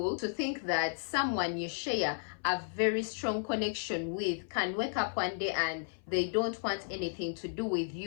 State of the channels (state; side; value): silent; right; 55 dB below the other